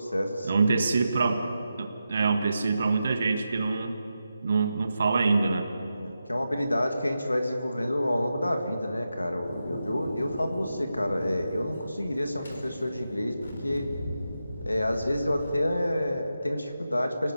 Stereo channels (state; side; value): inverted; both; correlation -0.89